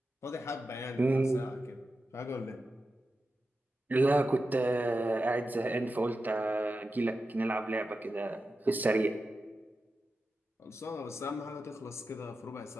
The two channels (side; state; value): both; normal; correlation 0.91